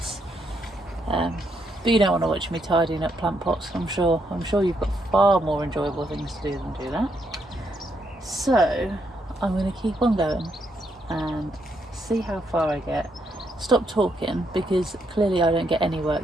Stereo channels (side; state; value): both; normal; correlation 0.76